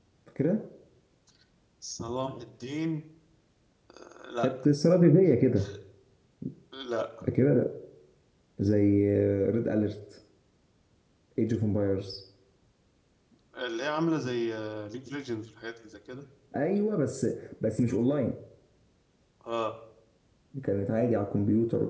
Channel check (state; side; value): identical; both; correlation 1.00